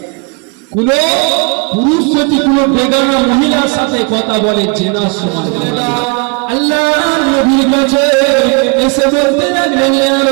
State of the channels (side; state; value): left; quieter; 32.6 dB